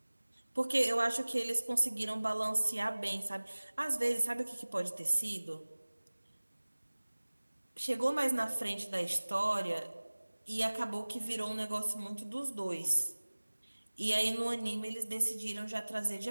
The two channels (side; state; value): both; inverted; correlation -1.00